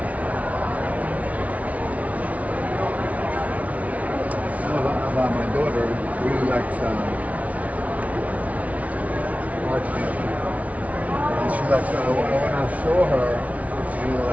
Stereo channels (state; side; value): late; left; 0.068 ms